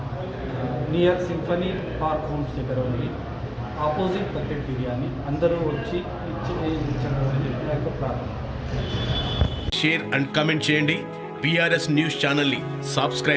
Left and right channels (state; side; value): identical; both; correlation 1.00